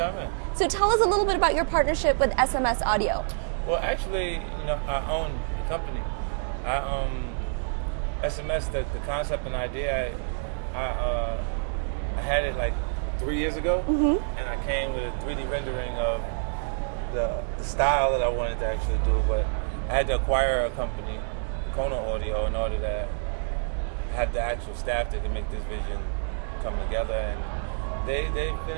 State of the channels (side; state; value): left; silent; digital silence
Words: So tell us a little bit about your partnership with SMS Audio. Well, actually, I own the company. SMS, the concept and idea, I had it like 3 years ago, and I came with a 3D rendering of the style that I wanted to actually do, but I had to acquire a company, Kona Audio, in order to have the actual staff that could make this vision come together, and they've been